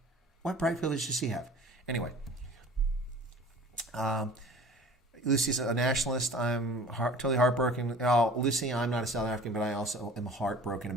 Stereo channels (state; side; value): normal; both; correlation 0.44